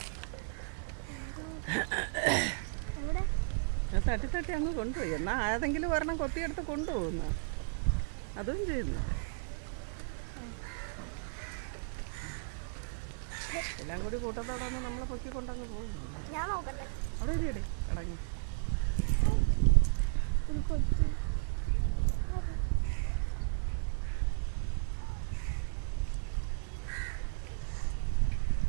തട്ടി തട്ടി അങ്ങ് കൊണ്ടുപോയി. എന്നാ ഏതെങ്കിലും ഒരെണ്ണം കൊത്തിയെടുത്ത് കൊണ്ടുപോകുന്ന അതും ചെയ്യുന്നു. എല്ലാം കൂടി കൂട്ടത്തോടൊന്ന് നമ്മളെ പൊക്കിക്കൊണ്ടങ്ങ് പോകുന്നു. അവിടെ ഇരിയടി അടങ്ങി.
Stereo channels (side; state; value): left; silent; 55 dB below the other